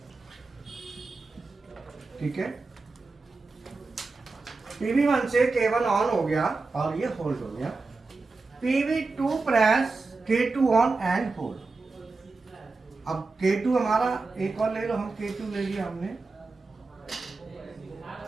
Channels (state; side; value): quieter; left; 3.8 dB